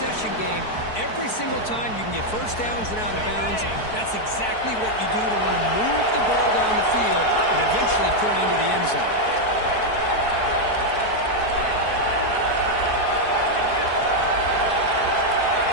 game. Every single time you can get first downs and out of bounds. That's exactly what you do to want to move the ball down the field and eventually put it into the end zone.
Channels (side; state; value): right; late; 4.6 ms